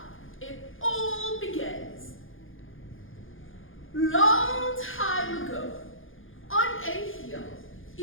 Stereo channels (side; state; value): right; late; 0.58 ms